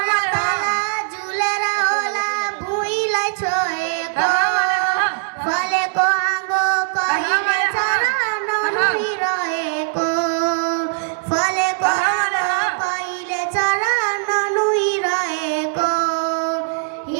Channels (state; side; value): silent; left; digital silence